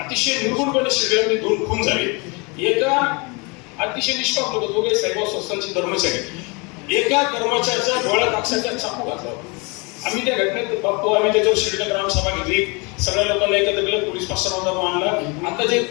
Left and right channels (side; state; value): right; quieter; 29.7 dB